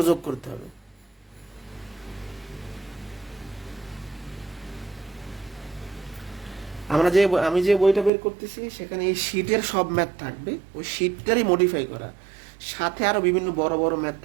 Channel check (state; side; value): drops out; left; at 8.1 s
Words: যোগ করতে হবে। আমি যে বইটা বের করতেছি সেখানে এই শীটের সব ম্যাথ থাকবে, ওই শীটটারই মডিফাই করা, সাথে আরো বিভিন্ন বড় বড় ম্যাথ